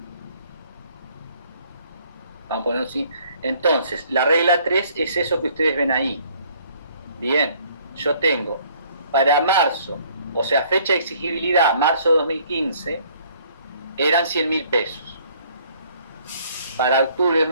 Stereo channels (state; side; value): inverted; both; correlation -0.60